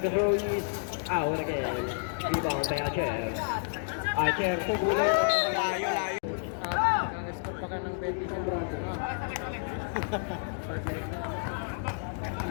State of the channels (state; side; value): silent; right; digital silence